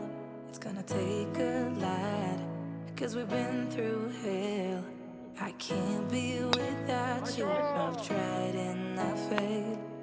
It's gonna take a lot, cause we've been through hell. I can't be without you. I've tried and I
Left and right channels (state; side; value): identical; both; correlation 1.00